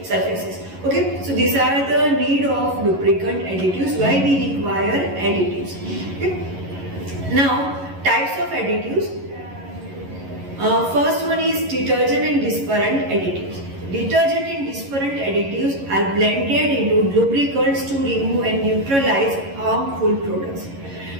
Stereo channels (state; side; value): late; left; 11 ms